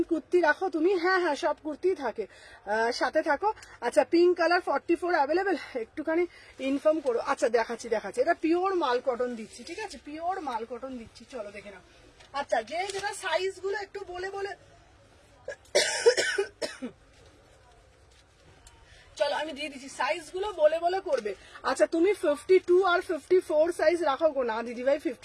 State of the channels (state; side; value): identical; both; correlation 1.00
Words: কুর্তি রাখো তুমি? হ্যাঁ হ্যাঁ, সব কুর্তি থাকে, সাথে থাকো। আচ্ছা পিঙ্ক কালার 44 অ্যাভেলেবেল, একটুখানি ইনফর্ম করো। আচ্ছা দেখাচ্ছি, এটা পিওর মাল কটন দিচ্ছি, ঠিক আছে? পিওর মাল কটন দিচ্ছি, চলো দেখে নাও। আচ্ছা যে যেটা সাইজ গুলো একটু বলে বলে চলো আমি দিয়ে দিচ্ছি, সাইজ গুলো বলে বলে করবে। আচ্ছা তুমি 52 আর 54 সাইজ রাখো গো? না দিদি ভাই